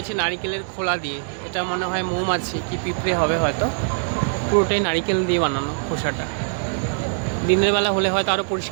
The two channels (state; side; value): silent; left; digital silence